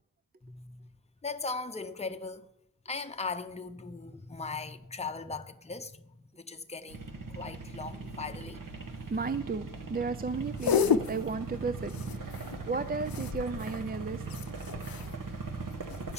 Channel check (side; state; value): both; normal; correlation 0.15